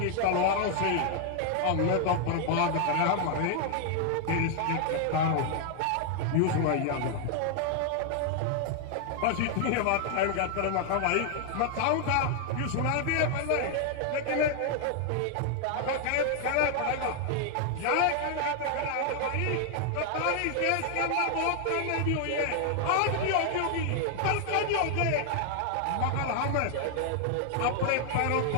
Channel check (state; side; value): different; both; correlation 0.00